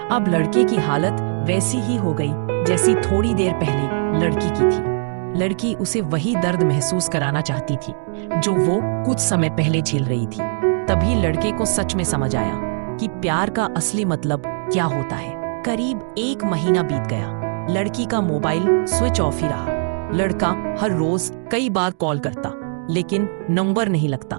अब लड़के की हालत वैसी ही हो गई जैसी थोड़ी देर पहले लड़की की थी। लड़की उसे वही दर्द महसूस कराना चाहती थी जो वो कुछ समय पहले झेल रही थी। तभी लड़के को सच में समझ आया कि प्यार का असली मतलब क्या होता है। करीब 1 महीना बीत गया, लड़की का मोबाइल स्विच ऑफ ही रहा। लड़का हर रोज कई बार कॉल करता लेकिन नंबर नहीं लगता।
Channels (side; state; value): left; silent; digital silence